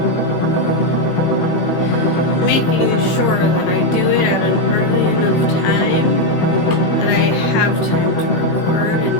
making sure that I do it at an early enough time, that I have time to record and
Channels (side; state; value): right; late; 18 ms